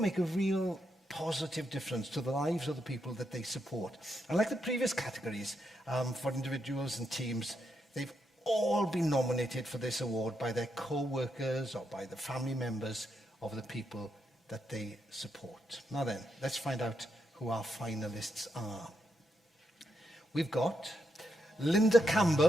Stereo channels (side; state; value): both; normal; correlation 0.81